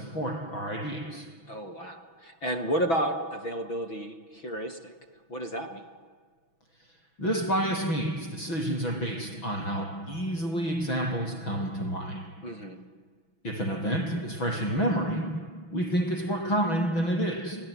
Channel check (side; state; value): right; late; 6.1 ms